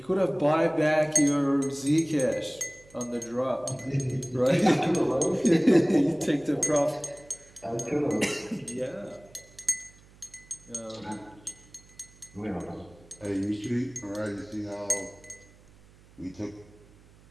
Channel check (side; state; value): right; noise; hum, 26 dB below the sound